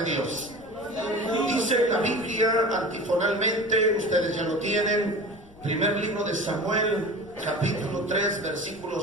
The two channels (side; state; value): left; noise; rumble, 24 dB below the sound